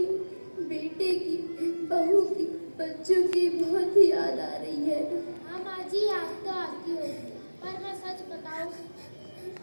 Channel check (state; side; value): inverted; both; correlation -1.00